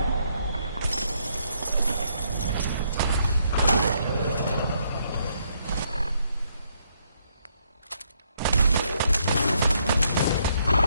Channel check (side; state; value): both; inverted; correlation -0.73